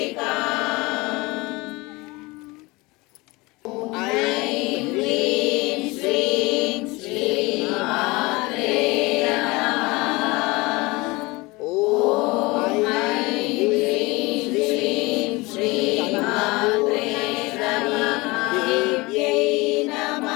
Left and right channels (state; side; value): quieter; right; 23.4 dB